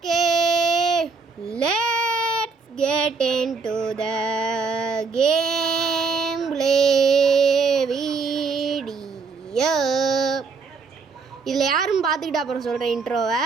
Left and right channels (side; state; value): left; quieter; 4.7 dB